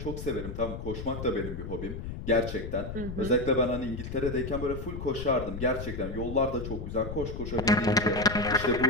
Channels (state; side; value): noise; left; rumble, 7 dB below the sound